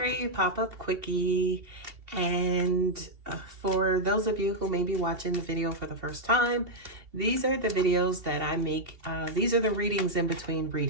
pop-up quickie. And for those of you who may be watching the video for the first time, these are the videos that I make. These are the readings in between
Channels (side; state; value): left; late; 2.7 ms